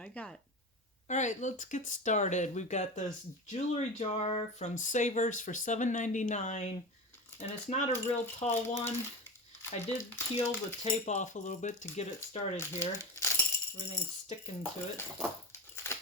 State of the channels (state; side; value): normal; both; correlation 0.25